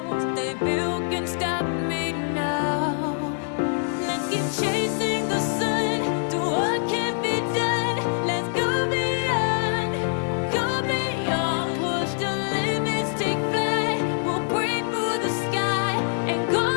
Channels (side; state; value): right; silent; digital silence